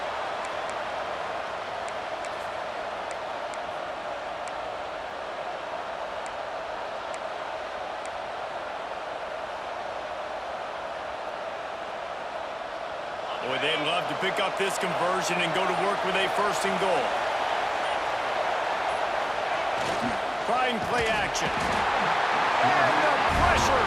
Boy, they'd love to pick up this conversion and go to work with a first and goal. Trying play action. And the pressure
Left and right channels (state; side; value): identical; both; correlation 1.00